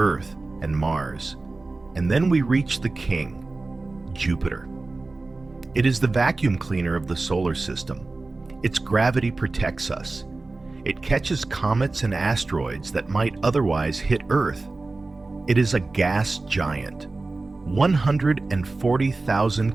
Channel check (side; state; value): left; quieter; 3.4 dB